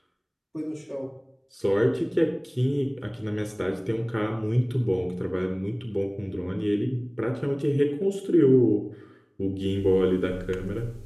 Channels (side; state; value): both; identical; correlation 1.00